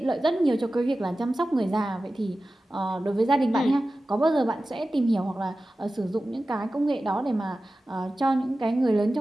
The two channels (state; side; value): normal; both; correlation 0.95